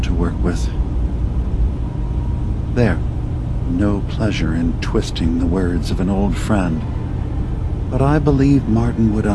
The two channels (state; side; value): identical; both; correlation 1.00